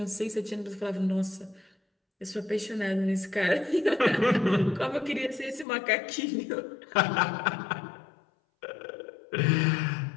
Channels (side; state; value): right; drops out; at 5.7 s